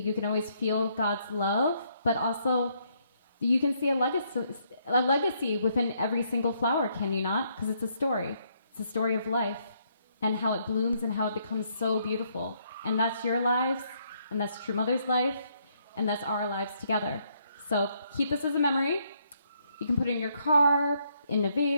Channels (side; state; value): both; inverted; correlation -0.72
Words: can always feel God's love, but also you can see a legacy within every single flower, can you not? Because it's a story. It's a story of life and how it blooms and how it becomes so beautiful. And that's your lives, and that's True Mother's life, and that's our lives together. So keep this as a memory. You can put it in your car, in a